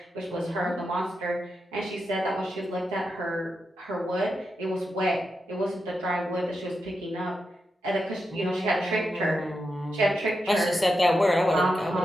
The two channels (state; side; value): normal; both; correlation 0.87